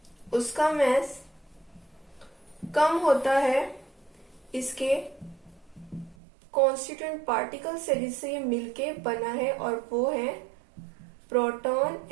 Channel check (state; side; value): drops out; left; at 6.2 s